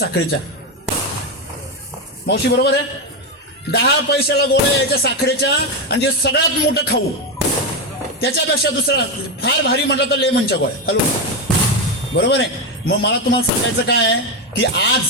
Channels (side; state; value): both; normal; correlation 0.10